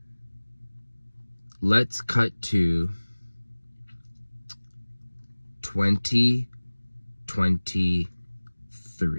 Let's cut to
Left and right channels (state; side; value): inverted; both; correlation -1.00